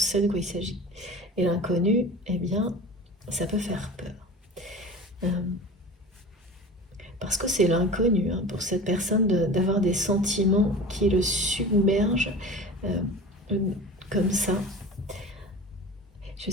de quoi il s'agit. Et l'inconnu, eh bien, ça peut faire peur. Parce que c'est l'inconnu, hein, pour cette personne d'avoir des sentiments qui le submergent comme ça. Je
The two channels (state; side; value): normal; both; correlation 0.36